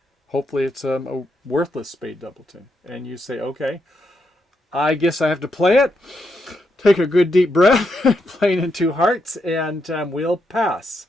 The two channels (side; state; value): both; normal; correlation 0.81